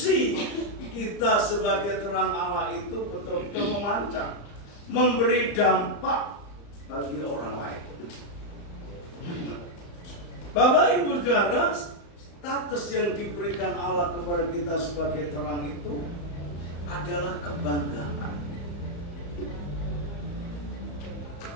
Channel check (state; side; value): late; right; 35 ms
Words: kita sebagai terang Allah itu betul-betul memancar, memberi dampak bagi orang lain. Bapak Ibu Saudara, status yang diberikan Allah kepada kita sebagai terang itu adalah kebanggaan.